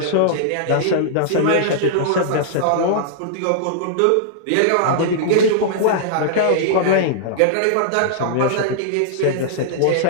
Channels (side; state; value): both; different; correlation -0.02